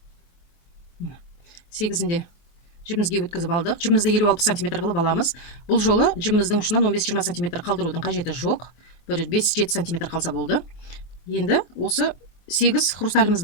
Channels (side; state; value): right; late; 23 ms